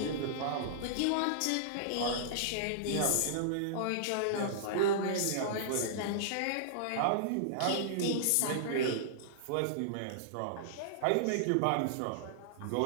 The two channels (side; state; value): both; different; correlation -0.02